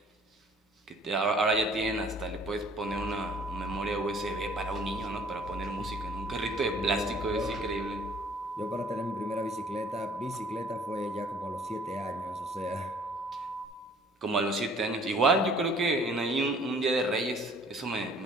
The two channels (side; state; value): both; normal; correlation 0.56